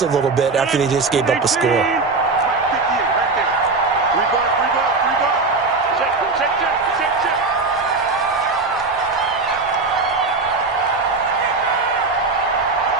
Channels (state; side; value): quieter; left; 3.9 dB